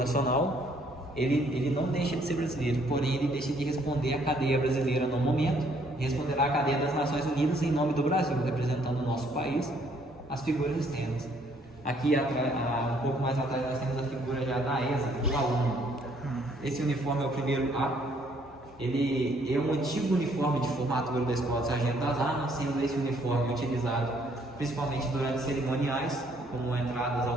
ele não deixa de ser brasileiro, porém ele deixa de responder à cadeia brasileira no momento, e responderá à cadeia das Nações Unidas em nome do Brasil, representando o nosso país, as figuras externas. Aqui, um pouco mais atrás, nós temos a figura já da ESA, do aluno. Esse uniforme é o primeiro A. Ele é um antigo uniforme de formatura da Escola de Sargento das Armas, sendo esse uniforme utilizado principalmente durante cerimoniais, como entradas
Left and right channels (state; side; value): normal; both; correlation 0.65